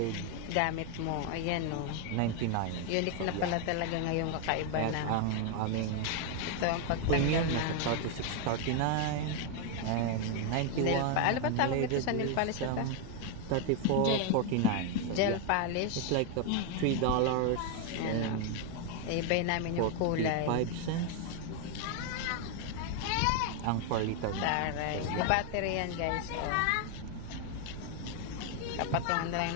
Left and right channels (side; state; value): both; different; correlation 0.01